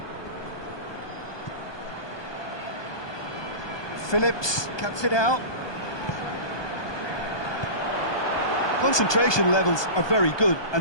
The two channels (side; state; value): right; late; 1.2 ms